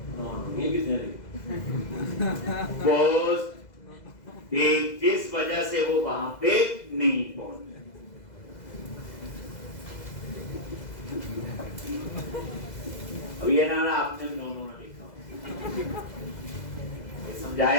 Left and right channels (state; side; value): late; right; 2.0 ms